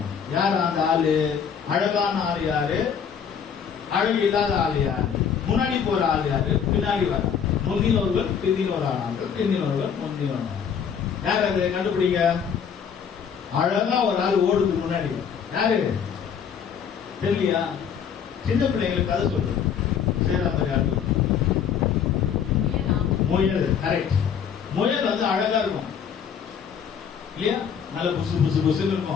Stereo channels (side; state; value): right; quieter; 7.5 dB